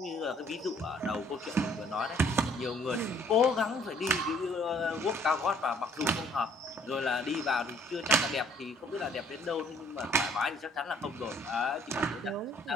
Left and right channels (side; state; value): both; normal; correlation 0.60